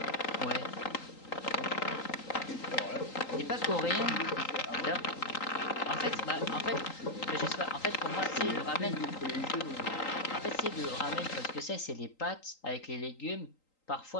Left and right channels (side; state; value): right; late; 3.8 ms